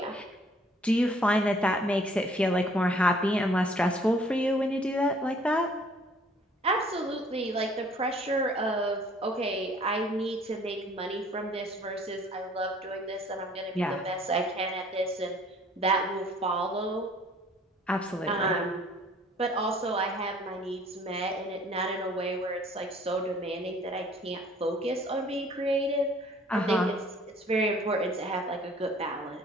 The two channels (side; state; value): both; normal; correlation 0.56